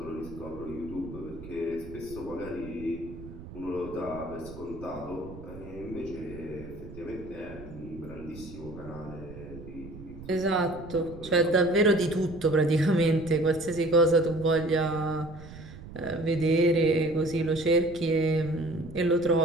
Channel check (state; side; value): noise; right; rumble, 15 dB below the sound